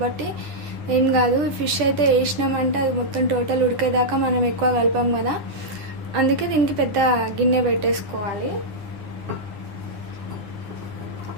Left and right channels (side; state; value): left; late; 9.7 ms